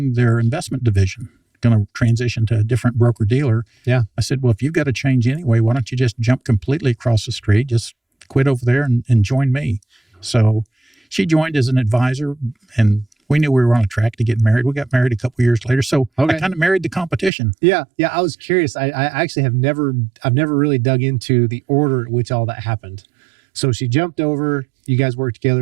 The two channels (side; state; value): left; drops out; at 17.3 s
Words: their investment division, going to transition to a different broker dealer. Yeah. I said, well, if you've got to change anyway, why don't you just jump completely across the street, just quit over there and join me. So she joined as an advisor, and we knew we were on a track to get married. We got married a couple years later. So I kind of married the competition. Yeah. I was curious. I actually I've never really dug into the order at which all that happened. So she jumped over, you guys worked